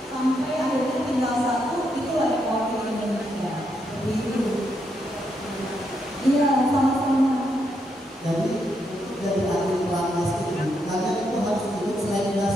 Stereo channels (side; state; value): both; normal; correlation 0.79